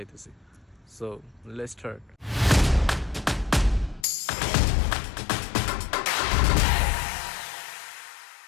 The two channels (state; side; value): drops out; right; at 4.0 s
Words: So let's start.